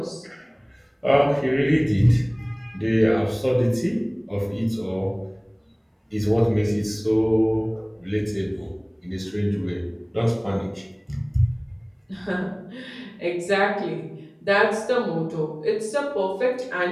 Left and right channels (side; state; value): both; identical; correlation 1.00